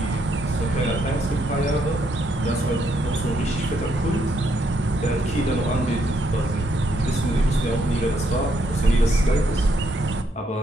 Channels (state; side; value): normal; both; correlation 0.75